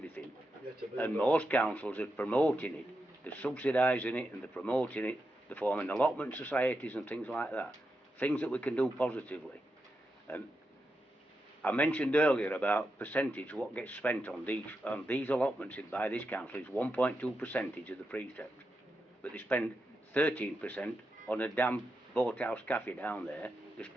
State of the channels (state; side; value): normal; both; correlation 0.87